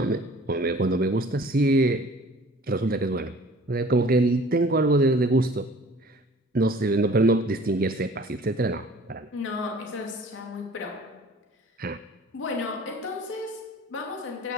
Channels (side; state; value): both; normal; correlation 0.49